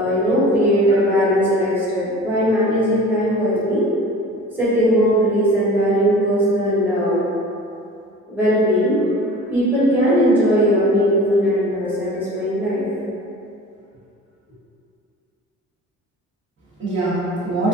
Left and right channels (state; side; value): normal; both; correlation 0.40